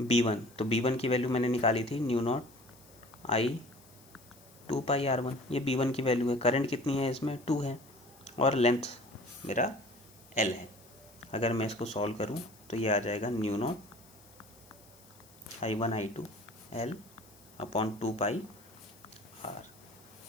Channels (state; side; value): noise; left; hiss, 25 dB below the sound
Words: B1। तो B1 की वैल्यू मैंने निकाली थी new not I/2 pi R1, ये B1 की वैल्यू है। करंट कितनी है इसमें, 2 है, और लेंथ मेरा L है। अगर मैं इसको सॉल्व करूं तो ये आ जाएगा new not I1/I2 L/2 pi R।